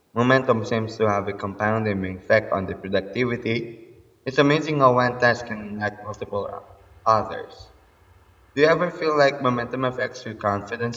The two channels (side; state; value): both; identical; correlation 1.00